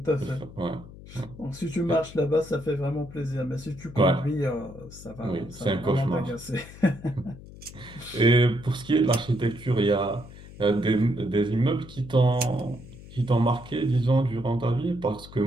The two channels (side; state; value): left; noise; hum, 17 dB below the sound